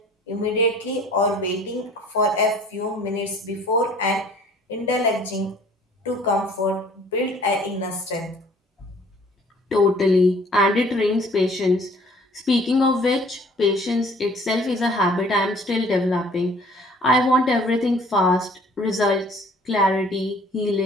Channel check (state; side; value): normal; both; correlation 0.54